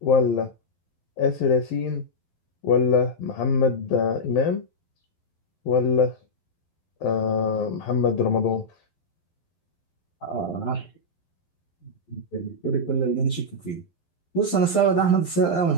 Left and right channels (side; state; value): right; late; 12 ms